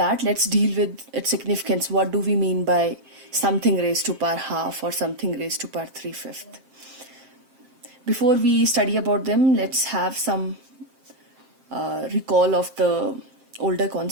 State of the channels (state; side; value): late; left; 7.5 ms